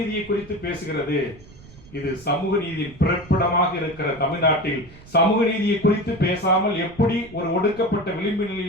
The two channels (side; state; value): right; noise; rumble, 21 dB below the sound